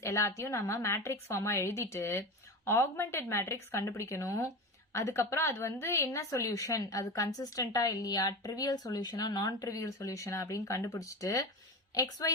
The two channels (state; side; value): normal; both; correlation 0.25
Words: எல்லாத்தையும் நம்ம matrix form எழுதிட்டு augmented matrix கண்டுபிடிக்கணும். அதுக்கப்புறம் அது வந்து என்ன சொல்யூஷன், அது கன்சிஸ்டன்டா இல்லையா, ட்ரிவியல் சொல்யூஷனா நான் ட்ரிவியல் சொல்யூஷனா அப்படின்னு கண்டுபிடிச்சிட்டு